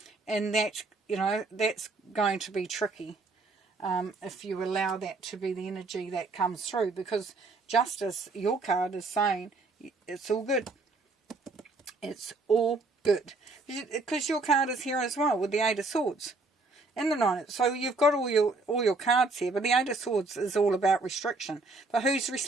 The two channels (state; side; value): quieter; left; 3.4 dB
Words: And that, that's going to be tricky if you allow that to be the energy that comes through. Because justice, your card is saying, it's all good. It's all good. Because your card is here as well with the Eight of Swords and the Nine. So you've got all your cards here. But the Eight of Swords is all about restriction. But who's